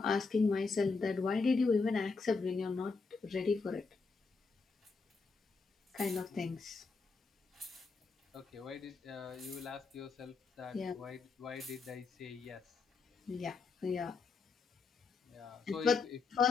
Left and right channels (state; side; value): quieter; right; 4.5 dB